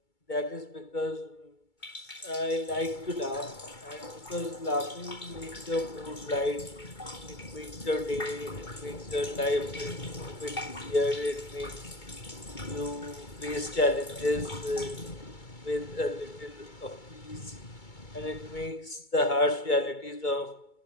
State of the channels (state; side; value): late; right; 2.2 ms